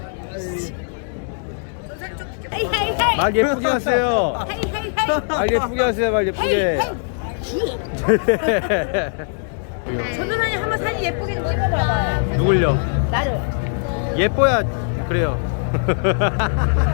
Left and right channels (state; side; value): silent; right; 65 dB below the other